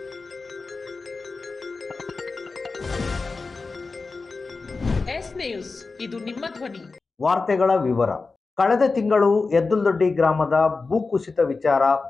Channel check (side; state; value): right; quieter; 4.1 dB